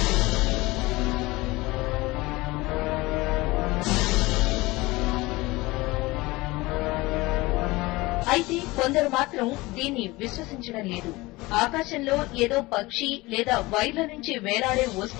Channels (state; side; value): quieter; right; 21.4 dB